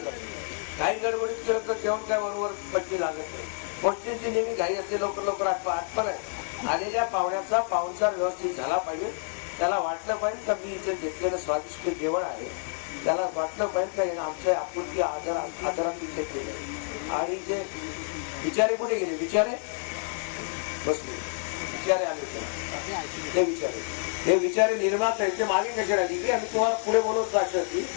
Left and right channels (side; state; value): right; silent; 55 dB below the other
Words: काही गडबडीत केलं तर जेवण काय बरोबर पट्टी लागत नाही. गोष्टींची नेहमी घाई असते, लवकर लवकर आठवण आहे. आलेल्या पाहुण्याचा पाहुणचार व्यवस्थित झाला पाहिजे. त्याला वाटलं पाहिजे का मी इथे घेतलेलं स्वादिष्ट जेवण आहे, त्याला वाटलं पाहिजे का आमच्या आपुलकी आदरात इथे केलं. आणि जे विचारे कुठे गेले, विचारे बसले, विचारे आले, ते विचारे, हे विचारे निर्माता ते मागे कसे राहिली की आम्ही तुम्हाला पुढे बोलवत जायचं की